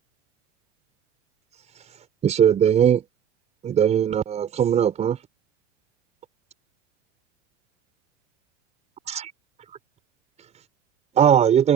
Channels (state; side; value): quieter; left; 8.8 dB